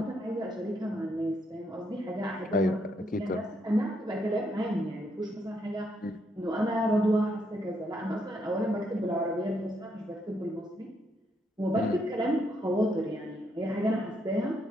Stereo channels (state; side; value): normal; both; correlation 0.76